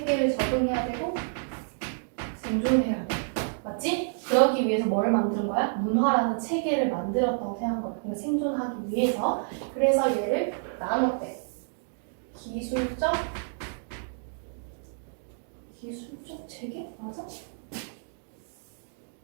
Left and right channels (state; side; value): silent; left; digital silence